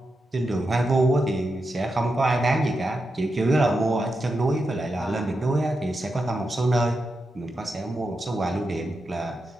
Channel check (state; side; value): normal; both; correlation 0.88